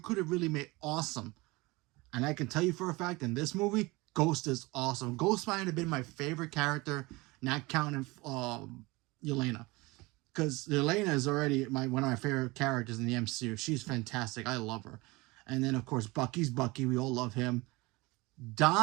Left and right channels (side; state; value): left; quieter; 23.1 dB